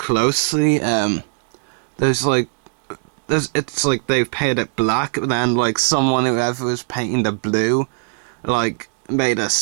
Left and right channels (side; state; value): left; silent; 61 dB below the other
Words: it's like they've painted it black, but then like whoever was painting the blue, like made a